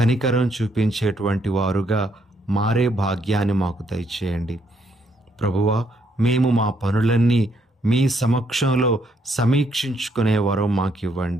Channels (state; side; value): normal; both; correlation 0.72